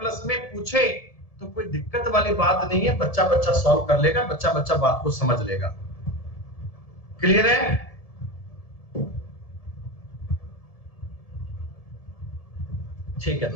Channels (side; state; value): right; late; 1.7 ms